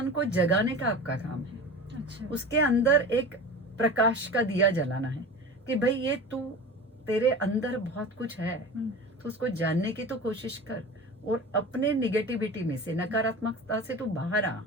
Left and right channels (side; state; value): both; normal; correlation 0.33